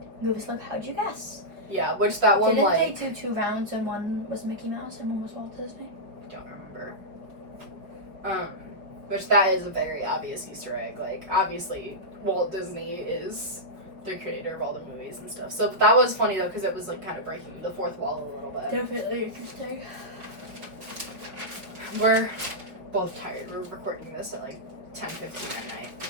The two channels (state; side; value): late; left; 5.6 ms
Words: Goofy's like, "How'd you guess?" yeah, which that one, Didn't like, they do 2 rounds and one was Mickey Mouse and one was Walt Disney? I don't remember. Which that is a very obvious Easter egg. Like, obviously, Walt Disney is the creator of all the movies and stuff. So that was funny, though, because it was, like, kind of breaking the fourth wall a little bit. Definitely interesting. We're both tired. We're recording this at, like, 10:15 at night.